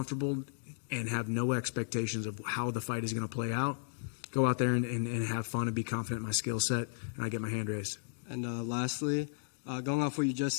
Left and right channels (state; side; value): silent; right; digital silence